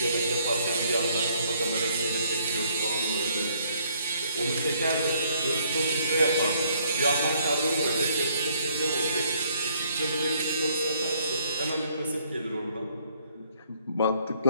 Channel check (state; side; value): inverted; both; correlation -0.67